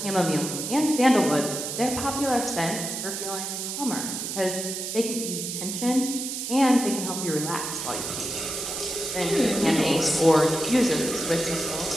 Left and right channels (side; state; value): right; noise; hiss, 5 dB below the sound